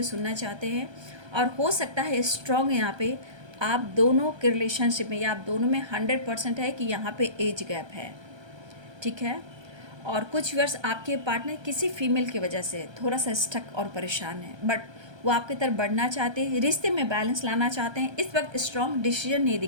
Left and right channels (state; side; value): late; left; 1.3 ms